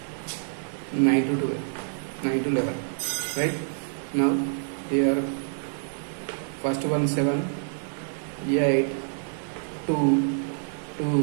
9 to 12, 9 to 11. Right? Now here first one 7, 8, 2, 2,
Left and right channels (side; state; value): left; silent; digital silence